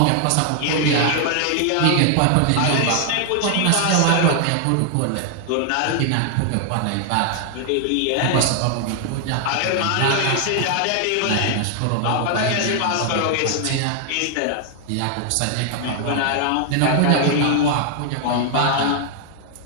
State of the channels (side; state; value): both; different; correlation 0.00